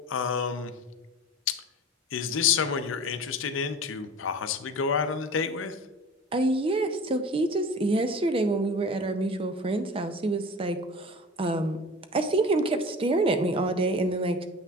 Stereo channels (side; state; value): both; normal; correlation 0.37